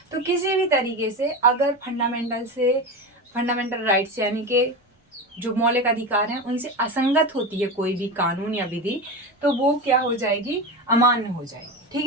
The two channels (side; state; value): both; normal; correlation 0.22